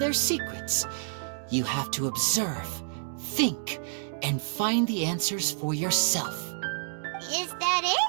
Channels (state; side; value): silent; left; digital silence